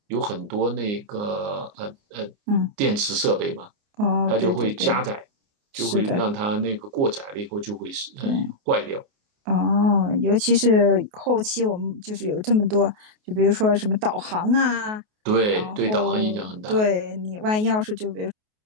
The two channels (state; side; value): late; left; 28 ms